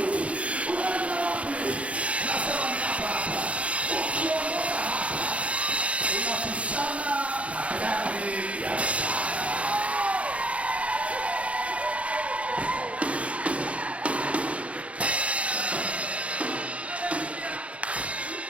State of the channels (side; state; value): left; late; 0.063 ms